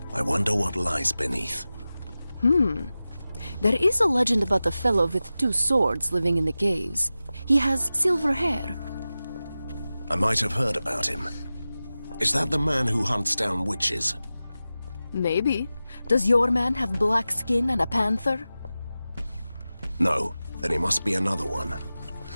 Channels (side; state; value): both; inverted; correlation -0.95